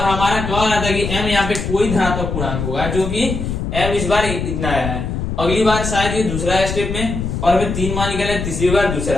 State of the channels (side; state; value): left; noise; rumble, 4 dB below the sound